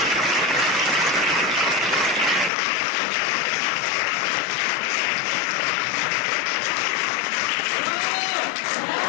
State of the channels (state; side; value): drops out; right; at 2.5 s